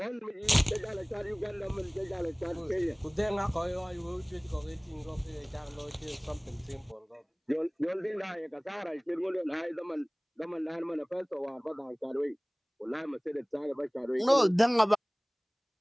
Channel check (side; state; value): both; identical; correlation 1.00